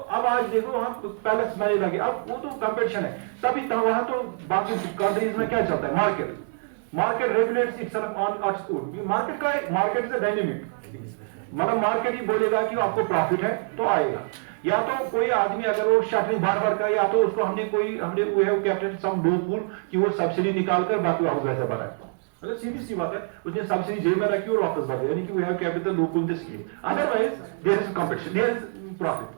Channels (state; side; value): silent; left; 59 dB below the other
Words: आज देखो वहाँ पैलेस में लगे, अब वो तो कंपटीशन है तभी तो, वहाँ तो बाकी कंट्रीज में क्या चलता है, market regulates itself on its own. Market is a dynamic, मतलब मार्केट ही बोलेगा कि आपको प्रॉफिट है तो आएगा, या तो कोई आदमी अगर वो शटरिंग बार कर, या तो उसको हमने वी हैव कैप्टेड सम लूपहोल कि वो सब्सिडी निकाल कर बाकी वापस वैसे भरा है। मतलब सीधी सी बात है, उसने सब्सिडी जेब में रखी और वापस भर दिया, यानी कि we have capped the loophole the scheme. Otherwise there is competition, there is profit.